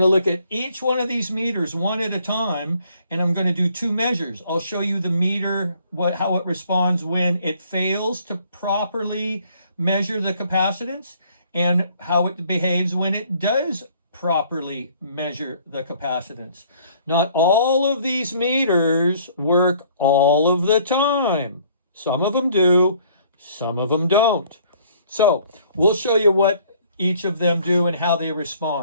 look at each one of these meters one at a time, and I'm going to do 2 measures. I'll show you the meter, how it responds when it fails to properly measure the capacitance, and how it behaves when it does properly measure the capacitance. Not all of these meters work all of the time. Some of them do, some of them don't. So we'll show you what each of them do and how they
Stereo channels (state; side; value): inverted; both; correlation -0.60